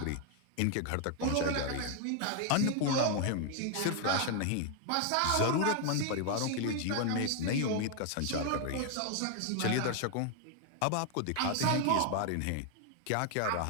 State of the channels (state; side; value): different; both; correlation 0.00